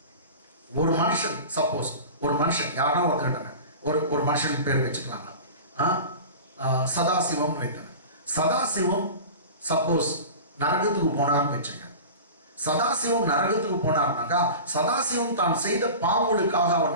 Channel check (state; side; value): inverted; both; correlation -0.34